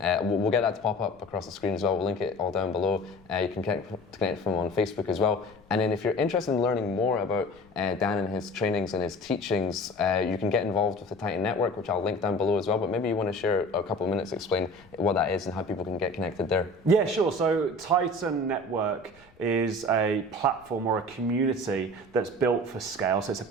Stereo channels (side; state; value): left; noise; rumble, 29 dB below the sound